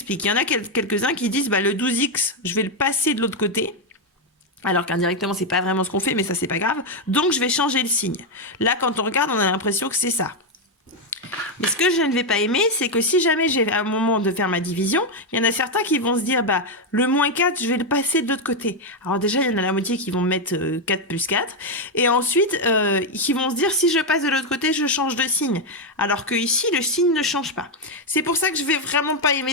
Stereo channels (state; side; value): normal; both; correlation 0.04